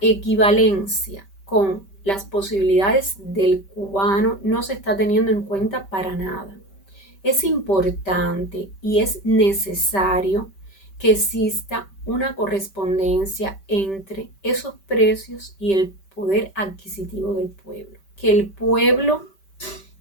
con las posibilidades del cubano no se está teniendo en cuenta para nada. Es importante y es necesario que exista una correspondencia entre esos precios y el poder adquisitivo del pueblo. Que el pueblo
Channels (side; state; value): right; late; 5.1 ms